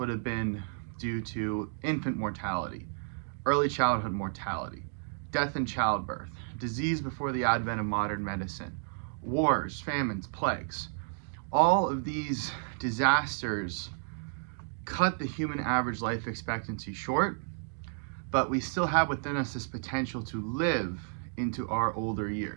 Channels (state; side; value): silent; left; digital silence